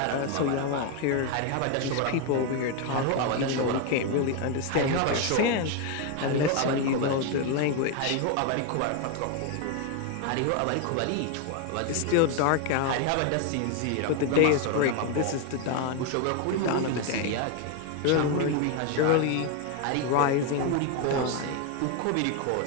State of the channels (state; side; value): different; both; correlation 0.01